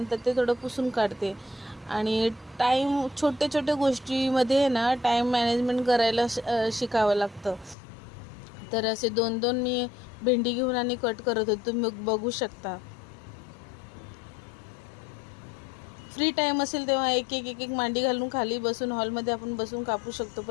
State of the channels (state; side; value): drops out; right; at 7.8 s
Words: ते थोडं पुसून काढते. आणि छोट्या छोट्या गोष्टीमध्ये ना टाईम मॅनेजमेंट करायला शिकावं लागतं. तर असे दोन दोन मी भेंडी घेऊन आणि कट करत होते, तुम्ही बघू शकता. फ्री टाईम असेल तेव्हा एक एक एक एक मांडी घालून खाली बसून हॉलमध्ये आपण बसून कापू शकतो,